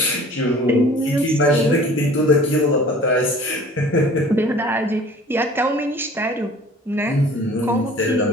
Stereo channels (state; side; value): normal; both; correlation 0.48